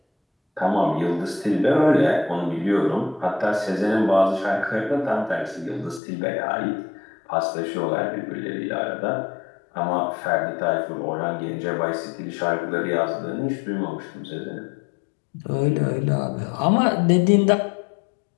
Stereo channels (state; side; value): drops out; right; at 6.0 s